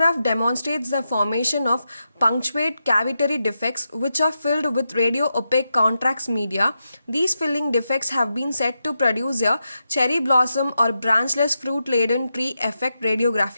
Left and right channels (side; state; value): both; inverted; correlation -0.87